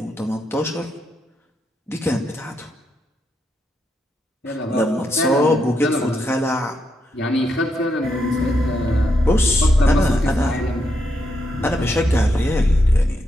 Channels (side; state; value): both; normal; correlation 0.81